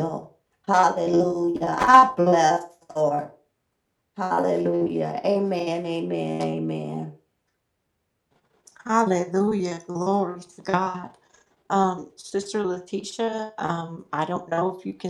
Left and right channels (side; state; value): both; identical; correlation 1.00